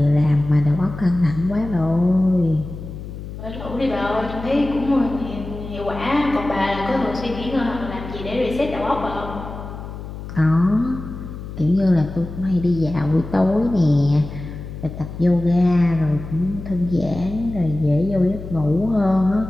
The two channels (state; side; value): noise; left; hum, 10 dB below the sound